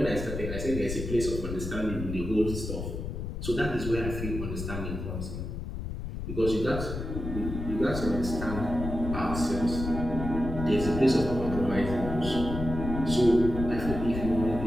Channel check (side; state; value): left; noise; rumble, 6 dB below the sound